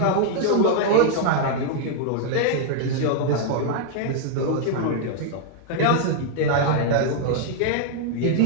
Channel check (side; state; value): both; different; correlation -0.01